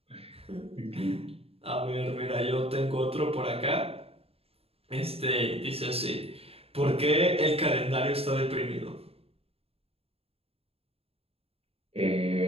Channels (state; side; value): late; left; 0.28 ms